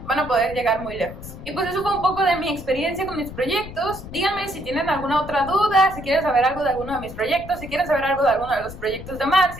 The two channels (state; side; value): noise; left; rumble, 13 dB below the sound